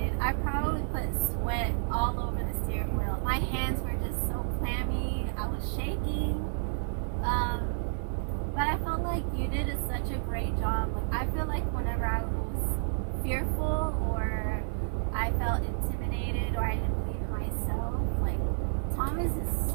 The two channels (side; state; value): left; silent; digital silence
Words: I probably put sweat all over the steering wheel. My hands were just so clammy. I was shaking. But I felt like you did such a great job. Like, I feel like whenever I was fearful or I felt intimidated or I didn't believe in myself. Like, Thomas is